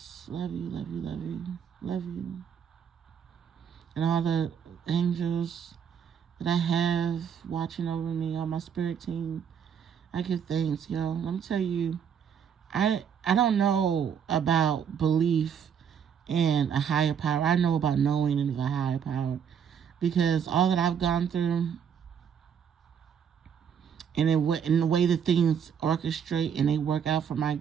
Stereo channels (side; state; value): left; quieter; 7.7 dB